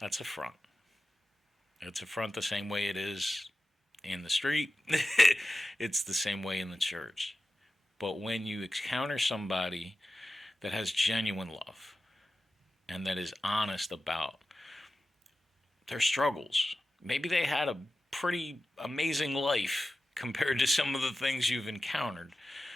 a front. It's a front the same way it is in the street. It's the same way in the church. But when you encounter somebody that has genuine love and that is honest about their struggles, maybe they had a pretty amazing life compared to some of the things you've encountered.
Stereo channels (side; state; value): both; normal; correlation 0.93